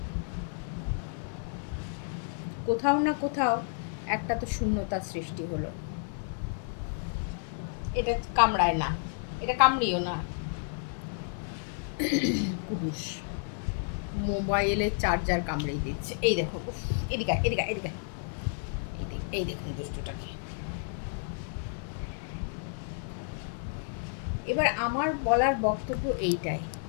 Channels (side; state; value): right; silent; digital silence